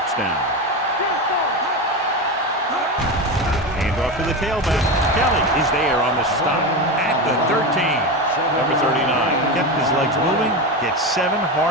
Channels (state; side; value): normal; both; correlation 0.19